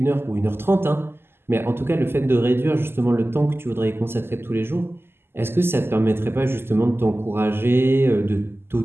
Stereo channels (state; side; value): late; left; 0.11 ms